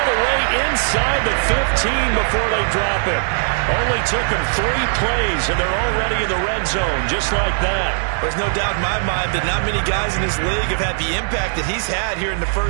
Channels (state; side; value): silent; left; 67 dB below the other